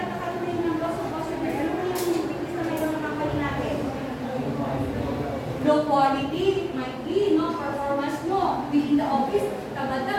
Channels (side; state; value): both; identical; correlation 1.00